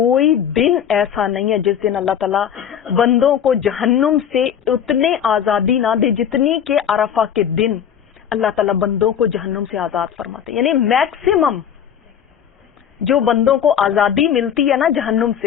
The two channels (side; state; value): right; quieter; 8.9 dB